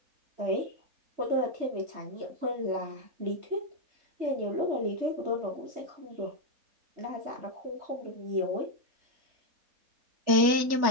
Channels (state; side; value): late; left; 3.4 ms